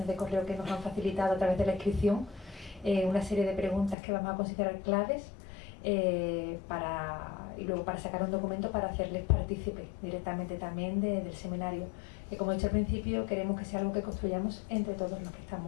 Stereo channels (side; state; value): right; drops out; at 4.0 s